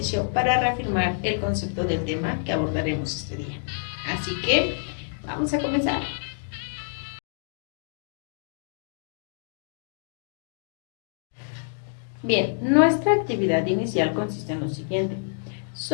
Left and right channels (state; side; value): silent; right; digital silence